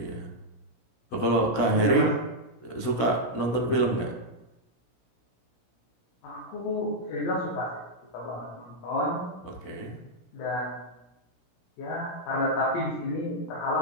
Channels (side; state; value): right; late; 17 ms